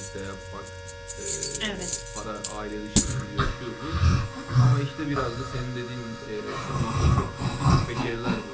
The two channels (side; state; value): both; identical; correlation 1.00